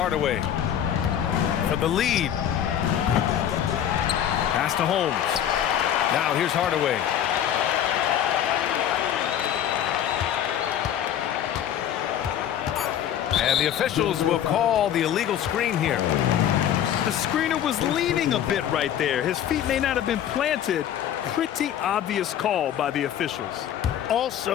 for the lead. Pass to Holmes. Now here's Hardaway. And the officials will call the illegal screen here. The screener was leaning a bit right there. His feet may not have been planted. Pretty obvious call by the officials.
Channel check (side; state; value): right; quieter; 10.2 dB